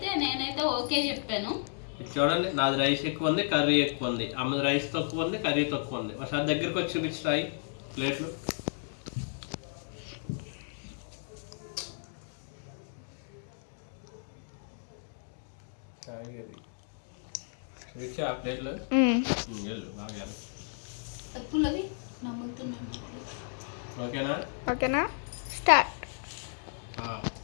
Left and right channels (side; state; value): right; silent; digital silence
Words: నేనైతే ఓకే చెప్పాను. చూడండి, నాది రైస్ ఎక్కువ ఉంది, కర్రీ ఎక్కువ ఉంది. అమ్మది రైస్ తక్కువ ఉంది, కర్రీ తక్కువ ఉంది. ఒకసారి దగ్గరికి వచ్చి చూపించాయి ప్లేట్లు. ఆ ప్లేట్లు బాగా ఓకేనా? ఓకేనా, స్టార్ట్.